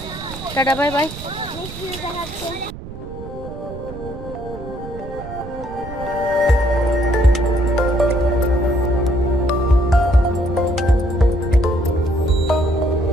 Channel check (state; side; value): noise; right; rumble, 12 dB below the sound